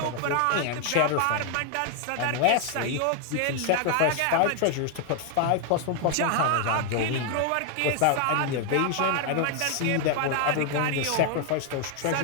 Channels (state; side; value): different; both; correlation 0.00